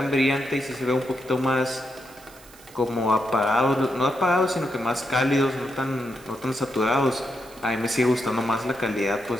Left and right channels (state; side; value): noise; right; hiss, 23 dB below the sound